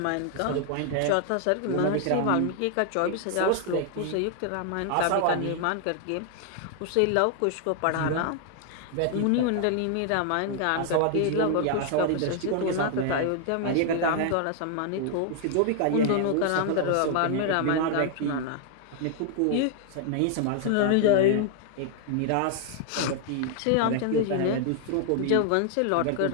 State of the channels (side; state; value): both; different; correlation 0.00